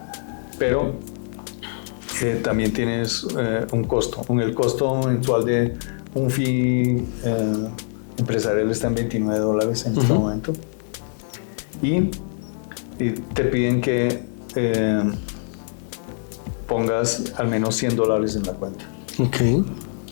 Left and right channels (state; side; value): silent; right; digital silence